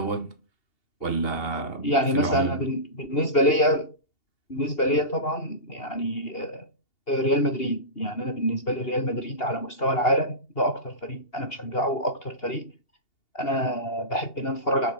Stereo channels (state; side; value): late; right; 2.8 ms